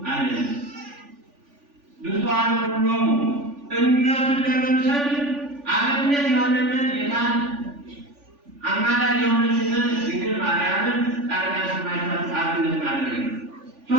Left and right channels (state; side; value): late; left; 3.5 ms